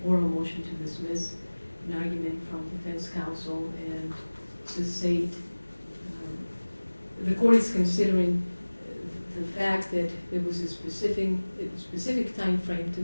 oral motion to dismiss, an argument from defense counsel and the state, the court is considering the fact that there was a specific time frame to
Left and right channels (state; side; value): inverted; both; correlation -1.00